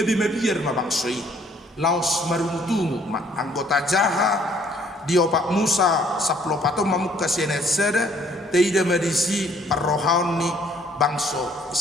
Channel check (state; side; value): normal; both; correlation 0.62